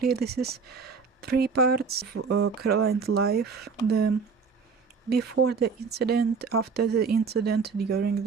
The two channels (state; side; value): quieter; left; 5.3 dB